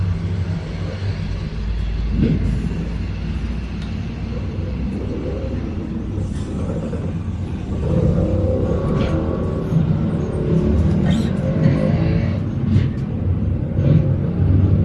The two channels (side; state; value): both; identical; correlation 1.00